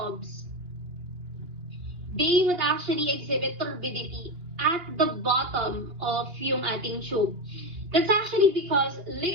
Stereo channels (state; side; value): late; left; 3.1 ms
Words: they would actually exhibit turbidity at the bottom of yung ating tube. That's actually because